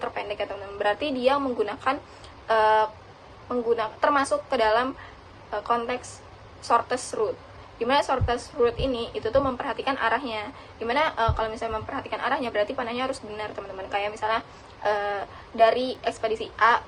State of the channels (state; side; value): identical; both; correlation 1.00